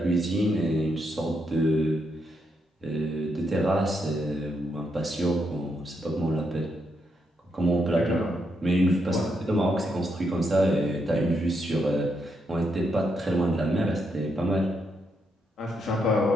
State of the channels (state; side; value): normal; both; correlation 0.79